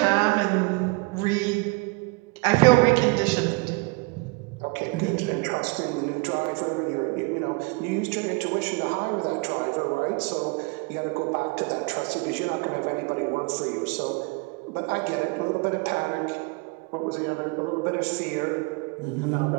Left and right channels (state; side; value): quieter; left; 27.8 dB